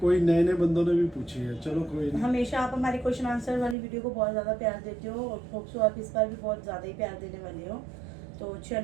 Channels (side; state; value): left; drops out; at 3.8 s